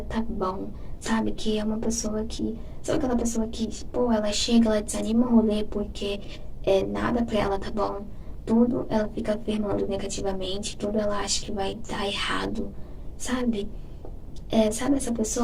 tá bom, sabe? Que é uma pessoa que... Sabe aquela pessoa que, pô, ela chega, ela desanima o rolê porque nada pra ela tá bom. Tudo ela fica afirmando negativamente, tudo ela acha que vai dar errado, sabe? Sabe essa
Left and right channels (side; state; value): both; identical; correlation 1.00